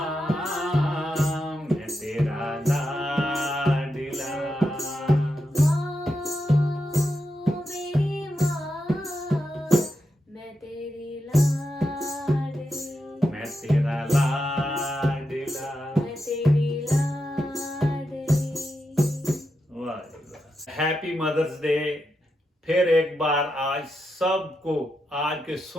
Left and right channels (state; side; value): normal; both; correlation 0.86